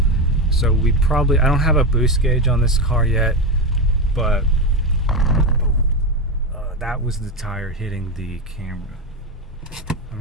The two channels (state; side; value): normal; both; correlation 0.14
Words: So I don't have a boost gauge on this car yet, but that was the tire hitting the camera. Let